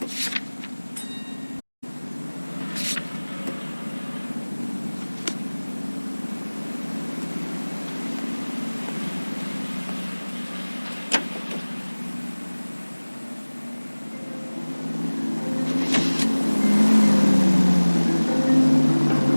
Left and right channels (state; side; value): inverted; both; correlation -1.00